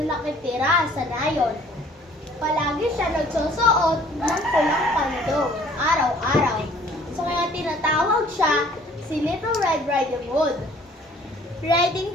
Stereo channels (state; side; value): normal; both; correlation 0.55